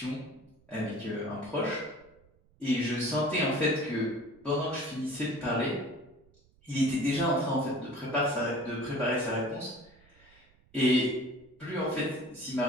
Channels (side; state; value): right; noise; rumble, 30 dB below the sound